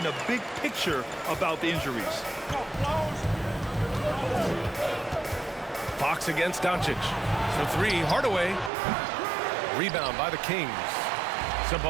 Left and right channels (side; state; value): left; drops out; at 8.7 s